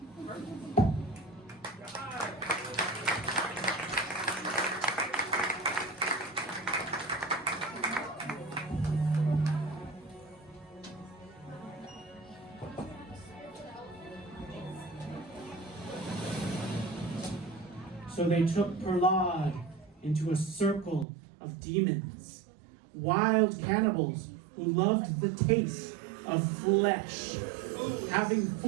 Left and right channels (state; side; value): drops out; left; at 21.1 s